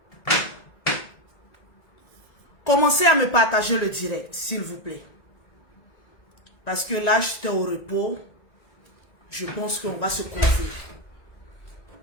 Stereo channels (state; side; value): late; right; 1.9 ms